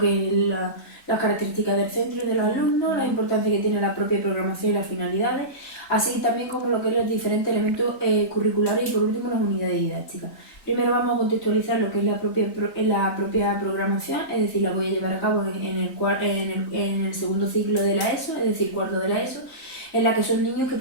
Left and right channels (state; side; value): late; right; 3.9 ms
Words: es las características del centro y de los alumnos, la importancia que tiene la propia programación y las finalidades, así también como lo que son los diferentes elementos curriculares y por último las unidades didácticas. Primero vamos a contextualizar lo que es la propia programación, es decir, la voy a llevar a cabo en el segundo ciclo de la ESO, es decir, cuarto de la ESO, en la que son niños que